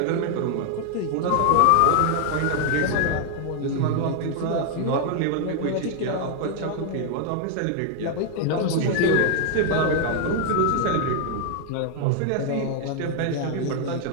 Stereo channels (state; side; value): different; both; correlation 0.00